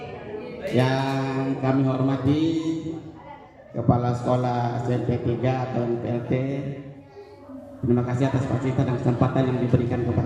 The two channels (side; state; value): both; identical; correlation 1.00